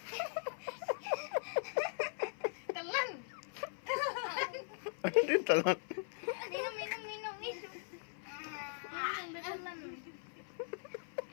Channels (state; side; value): silent; right; 51 dB below the other